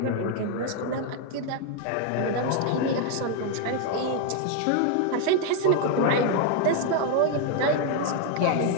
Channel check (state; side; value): different; both; correlation 0.00